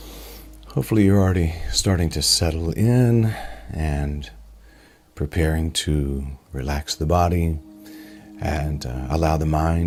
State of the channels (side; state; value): both; identical; correlation 1.00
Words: Hopefully you're already starting to settle in and preparing to relax the body and allow the